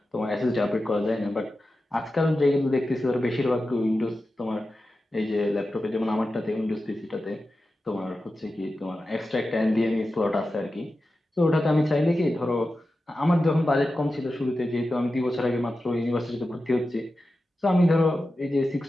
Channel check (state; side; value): normal; both; correlation 0.92